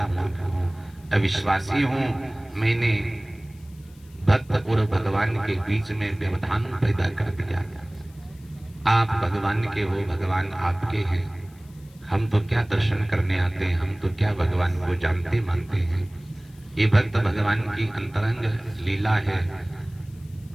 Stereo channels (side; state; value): left; noise; hiss, 29 dB below the sound